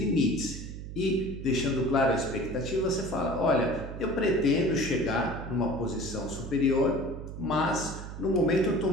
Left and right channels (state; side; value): noise; right; hum, 9 dB below the sound